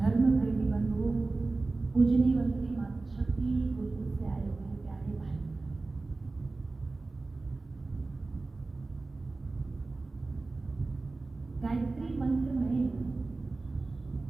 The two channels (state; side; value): quieter; left; 3.5 dB